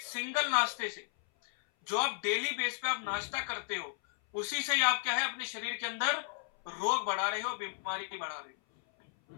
सिंगल नाश्ते से, जो आप डेली बेस पे आप नाश्ता करते हो, उसी से ही आप क्या है अपने शरीर के अंदर रोग बढ़ा रहे हो, बीमारी बढ़ा रहे हो।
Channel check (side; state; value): right; silent; 55 dB below the other